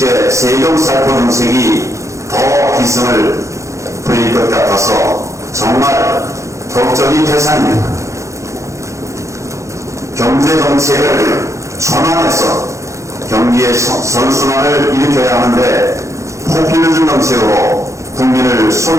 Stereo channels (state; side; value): late; left; 0.15 ms